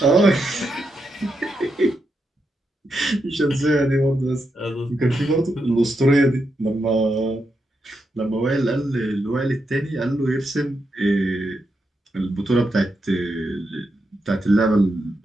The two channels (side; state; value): both; normal; correlation 0.84